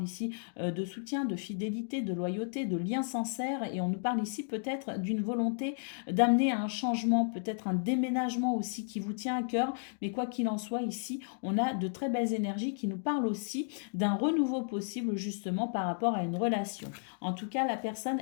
ici de soutien, de fidélité, de loyauté, de lien sincère, et on nous parle ici peut-être d'une volonté d'amener à un changement, peut-être un déménagement aussi qui vous tient à cœur, mais quoi qu'il en soit, ici, on a de très belles énergies qui nous parlent aussi d'un renouveau possible justement par rapport à une relation. En tout cas, la personne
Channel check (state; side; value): silent; right; digital silence